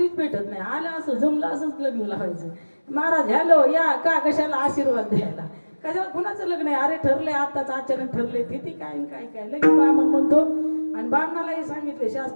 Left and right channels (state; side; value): inverted; both; correlation -1.00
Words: भेटत नाही, आलं असं जमलं असंच लग्न लावायचं. महाराज हॅलो या का, कशाला आशीर्वाद द्यायला, कशाला कुणाचं लग्न आहे, अरे ठरलंय आताच अचानक ठरलंय, तिथी काय काय लगेच बामण म्हणतो. आणि बामणालाही सांगितले